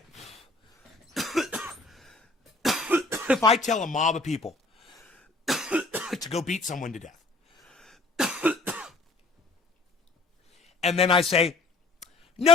If I tell a mob of people to go beat someone to death, and then I say, no,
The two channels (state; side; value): quieter; right; 3.4 dB